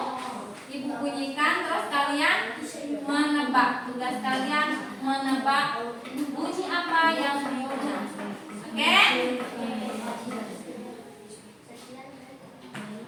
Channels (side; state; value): both; identical; correlation 1.00